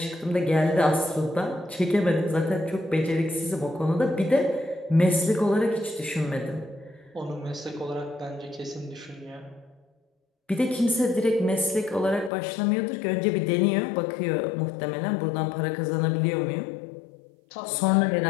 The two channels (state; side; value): drops out; right; at 12.3 s